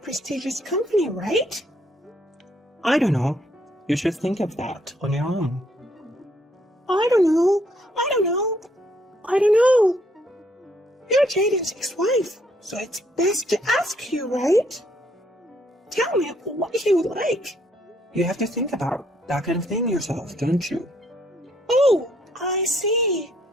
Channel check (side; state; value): both; normal; correlation 0.69